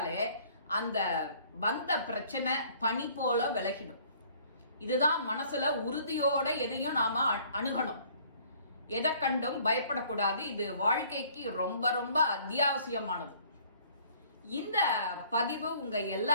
அந்த வந்த பிரச்சனை பனி போல விலகிடும். இதுதான் மனசுல உறுதியோட எதையும் நாம அணுகணும். எதை கண்டும் பயப்படக்கூடாது. இது வாழ்க்கைக்கு ரொம்ப ரொம்ப அத்தியாவசியமானது. இந்த பதிவு உங்க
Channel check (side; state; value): both; inverted; correlation -0.57